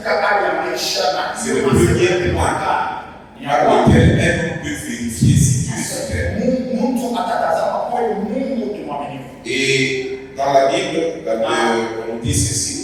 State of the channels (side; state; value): both; identical; correlation 1.00